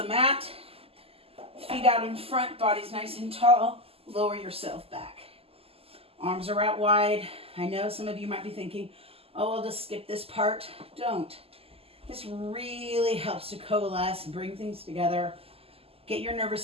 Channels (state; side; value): late; left; 0.28 ms